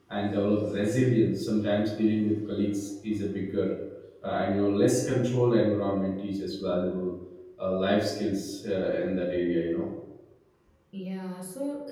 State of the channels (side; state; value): both; identical; correlation 1.00